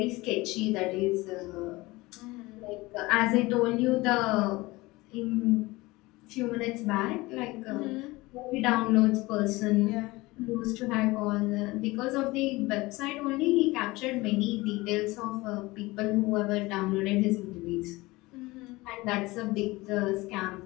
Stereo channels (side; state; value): right; quieter; 21.2 dB